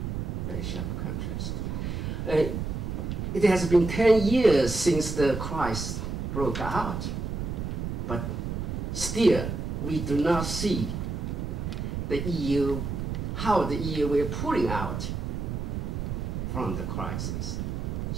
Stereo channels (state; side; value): noise; right; rumble, 3 dB below the sound